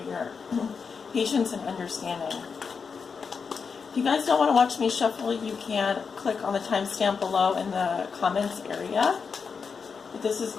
your patience and understanding. If you guys don't want to watch me shuffle, you can click on the timestamp below in the comments area. But this is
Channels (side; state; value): right; quieter; 5.6 dB